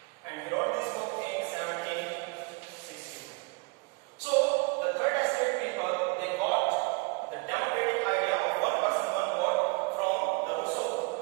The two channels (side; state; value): left; quieter; 29.3 dB